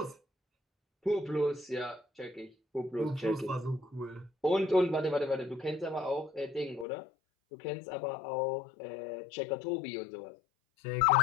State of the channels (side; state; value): right; drops out; at 6.9 s